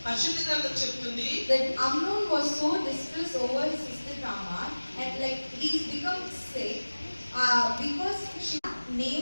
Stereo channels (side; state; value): both; inverted; correlation -1.00